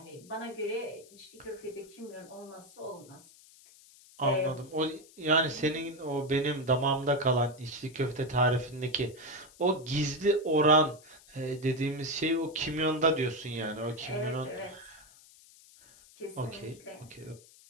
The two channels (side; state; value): left; noise; hiss, 24 dB below the sound